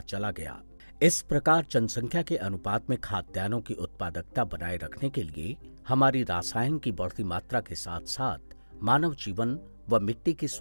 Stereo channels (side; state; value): both; inverted; correlation -1.00